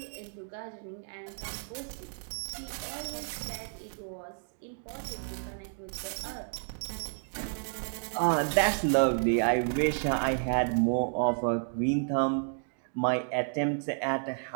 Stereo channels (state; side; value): silent; left; 57 dB below the other